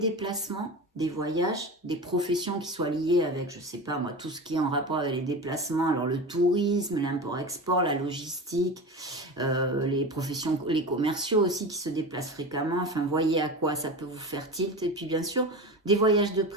des voyages, des professions qui soient liées avec, je sais pas moi, tout ce qui est en rapport avec les déplacements, alors le tourisme, l'import-export, la logistique, les professions, les commerciaux aussi qui se déplacent fréquemment, enfin voyez à quoi ça peut vous faire tilt, et puis bien sûr des voyages de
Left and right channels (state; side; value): normal; both; correlation 0.28